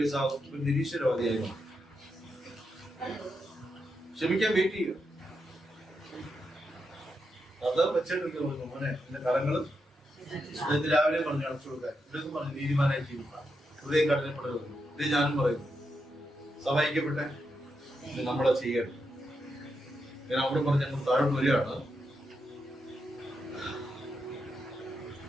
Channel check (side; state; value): both; normal; correlation 0.84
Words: നിരീശ്വരവാദിയായി ക്ഷമിക്കാൻ വെയിറ്റ് ചെയ്യുക. അത് വെച്ചിട്ട് മോനെ എന്റെ കരങ്ങള് രാവിലെ പറഞ്ഞു അടച്ചു കൊടുക്കാൻ. ഇവിടെയൊക്കെ പറഞ്ഞു നീതിമാനായി ജീവിക്കാം, ഹൃദയം കഠിനപ്പെടരുത്. ഇത് ഞാനും പറയുന്നു. സഹായിക്കപ്പെട്ടെ നമ്മളെ ചെയ്യണം. ഞാൻ അവിടെ പറഞ്ഞ് ഞങ്ങൾ താഴെ വരികയാണ്.